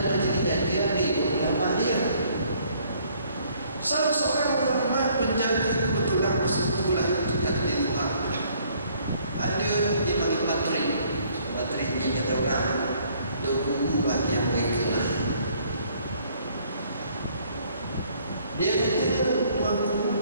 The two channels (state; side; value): inverted; both; correlation -0.62